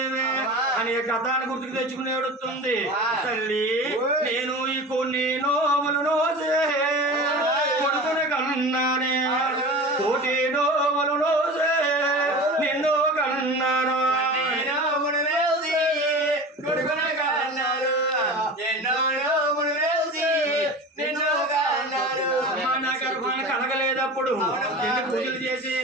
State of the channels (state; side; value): normal; both; correlation 0.34